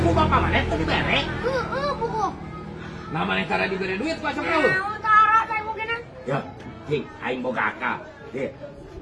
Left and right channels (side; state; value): both; identical; correlation 1.00